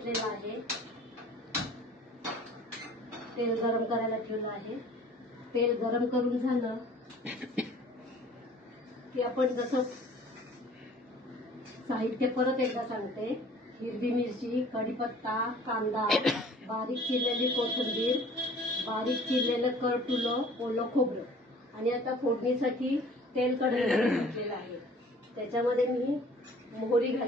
आहे, तेल गरम करायला ठेवलं आहे। तेल गरम करून झालं की आपण जसं साहित्य परत एकदा सांगते। हिरवी मिरची, कढीपत्ता, कांदा, बारीक चिरलेली कोथिंबीर, बारीक चिरलेलं करटुलं, ओलं खोबरं, आणि आता फोडणीसाठी तेल कढईमध्ये घातलेलं आहे। त्याच्यामध्ये मी मोहरी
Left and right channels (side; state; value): both; normal; correlation 0.50